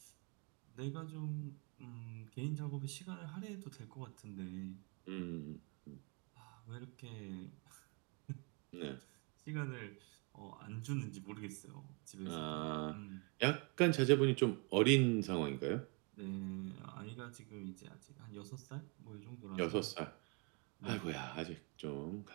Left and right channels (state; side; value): quieter; left; 33.8 dB